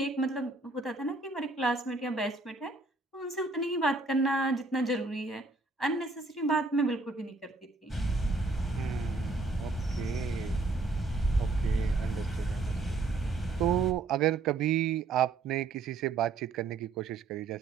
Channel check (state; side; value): quieter; left; 3.6 dB